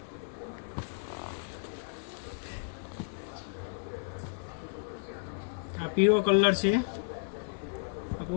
આ પીળો કલર છે, આ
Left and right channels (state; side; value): silent; right; 56 dB below the other